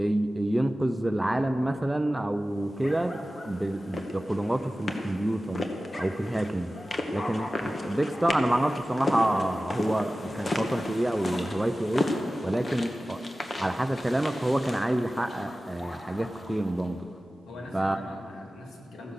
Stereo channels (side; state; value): both; normal; correlation 0.96